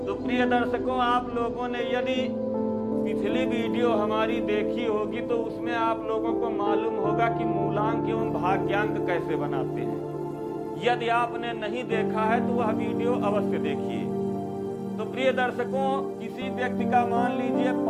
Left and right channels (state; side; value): identical; both; correlation 1.00